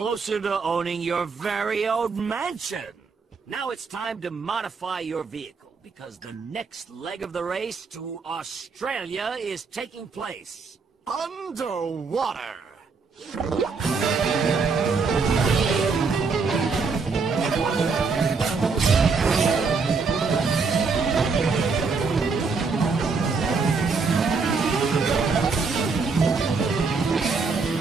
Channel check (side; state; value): left; quieter; 4.7 dB